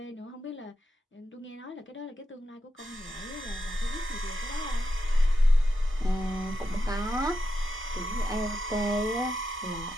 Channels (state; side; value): normal; both; correlation 0.86